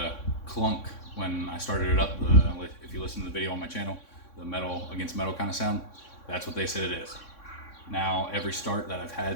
clunk when I started it up. If you listen to the video on my channel, the metal against metal kind of sound, that's what they said it is. Now, every start that I've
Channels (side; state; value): right; late; 3.6 ms